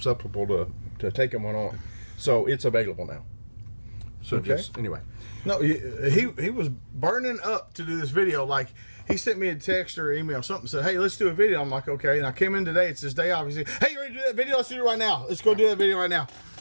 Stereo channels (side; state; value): both; inverted; correlation -1.00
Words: to taking one on. So it's available now. So anyway. No, he was burning up to do this video. Like, he sent me a text or email, something, said, hey, let's do a video. I'm like, okay. And I came in today. It's his day off. He said, hey, you ready to do that video? Let's do it right now. Let's go do that video right now.